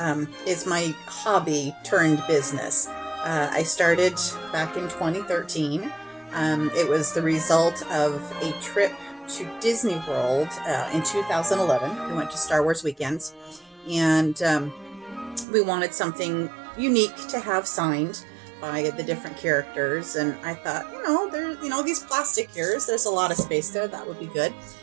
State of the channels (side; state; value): left; drops out; at 15.5 s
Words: is my hobby turned business. I started back in 2013. It was the result of a trip to Disney World in 2011. We went to Star Wars weekends, and we wanted something unique to have signed by the different characters. And I thought, these plastic ears, there's a lot of space there. That would be good.